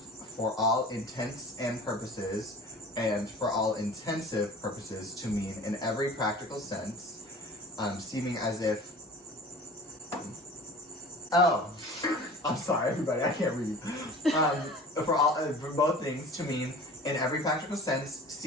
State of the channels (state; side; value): normal; both; correlation 0.41